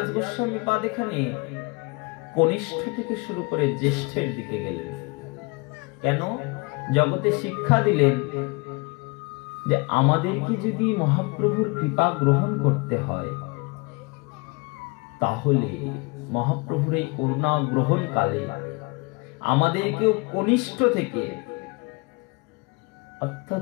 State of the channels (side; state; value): right; quieter; 28.0 dB